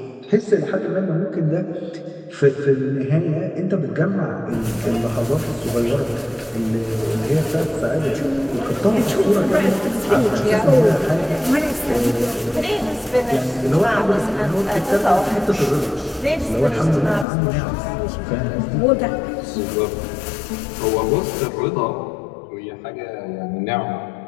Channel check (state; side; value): drops out; right; at 17.2 s